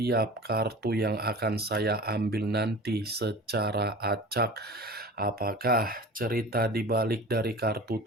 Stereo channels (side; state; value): both; normal; correlation 0.37